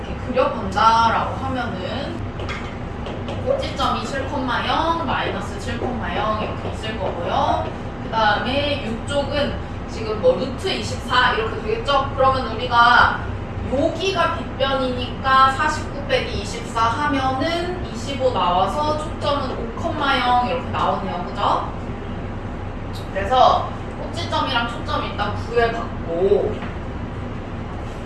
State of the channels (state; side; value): identical; both; correlation 1.00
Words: 그려본다라고 하면은 꼭지점이 7,0 마이너스 7,0 이렇게 있을 거고요. 그 다음에 이쪽은 지금 뭐 루트 24 이렇게 되겠죠? 그러면 우리가 여기가 빗변이니까 49 빼기 24 하면은 25 나와서 초점은 5,0 이렇게 나오네요. 그죠? 그래서 꼭지점이랑 초점 일단 구해봤고